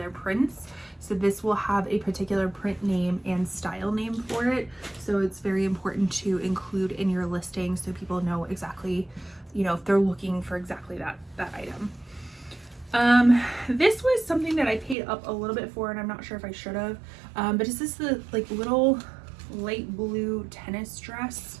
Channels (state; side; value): drops out; left; at 15.0 s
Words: prints. So this will have a particular print name and style name for it. So it's very important to include in your listing so people know exactly, you know, if they're looking for exactly that item. This was something that I paid up a little bit for, and I'm not sure if I should have, but it's this the like little light blue tennis dress.